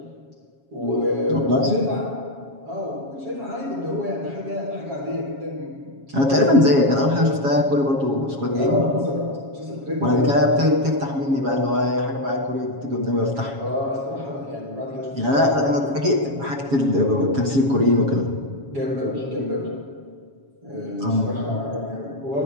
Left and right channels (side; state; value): left; late; 7.3 ms